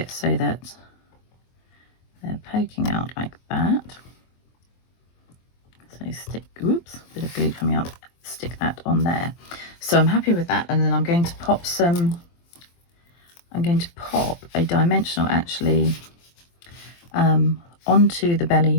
so that they're poking out like that. So stick, oops, bit of glue coming out, stick that on there. So I'm happy with that, and then I'm going to pop a dimensional actually onto the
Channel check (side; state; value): right; late; 23 ms